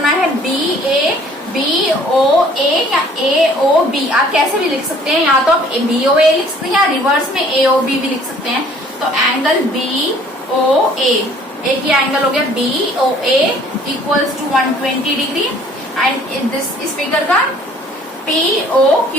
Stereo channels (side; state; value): both; normal; correlation 0.56